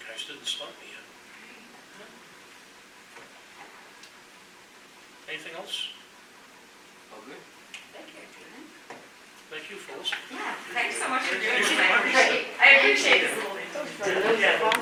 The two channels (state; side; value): identical; both; correlation 1.00